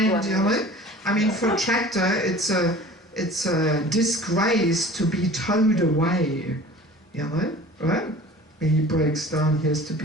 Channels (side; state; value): both; normal; correlation 0.43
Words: you know. I mean, for a tractor, it's a disgrace to be towed away, you know, right? When he breaks down, he has to be